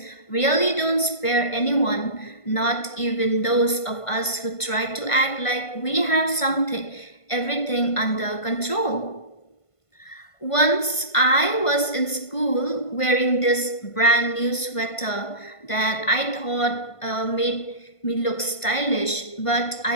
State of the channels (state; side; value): late; right; 1.5 ms